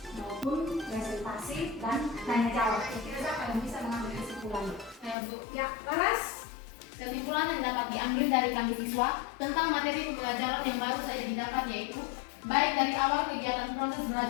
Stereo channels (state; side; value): drops out; right; at 5.2 s